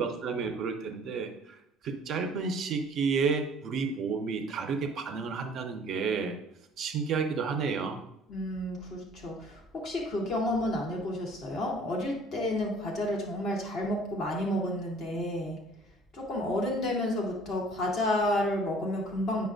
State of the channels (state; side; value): normal; both; correlation 0.53